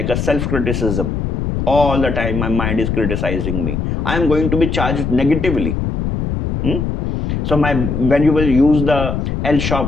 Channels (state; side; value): noise; left; rumble, 1 dB below the sound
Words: a self-criticism, All the time my mind is criticizing me. I am going to be charged negatively. So when you will use the